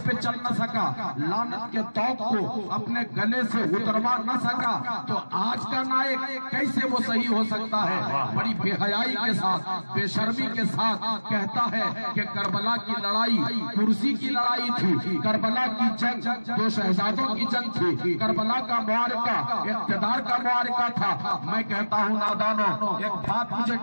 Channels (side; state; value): both; inverted; correlation -1.00